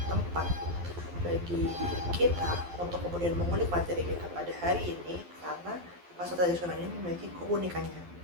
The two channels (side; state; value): left; late; 12 ms